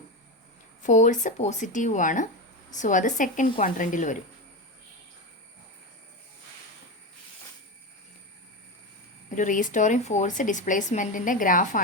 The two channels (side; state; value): both; normal; correlation 0.17